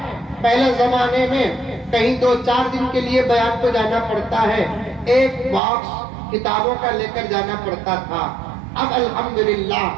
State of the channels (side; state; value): left; drops out; at 5.6 s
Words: پہلے زمانے میں کہیں 2-4 دن کے لیے بیان کو جانا پڑتا ہے، ایک باکس کتابوں کا لے کر جانا پڑتا تھا۔ اب الحمدللہ